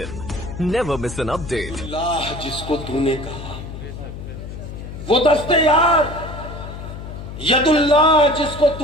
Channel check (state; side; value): noise; left; hum, 10 dB below the sound